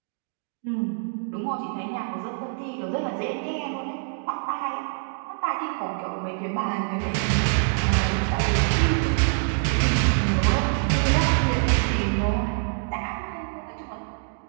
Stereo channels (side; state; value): left; silent; digital silence